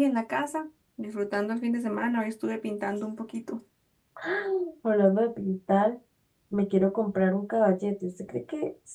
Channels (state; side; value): identical; both; correlation 1.00